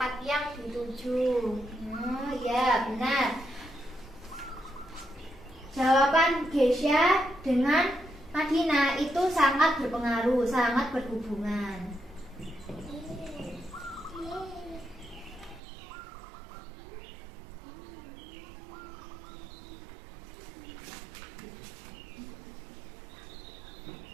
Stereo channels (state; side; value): drops out; left; at 15.6 s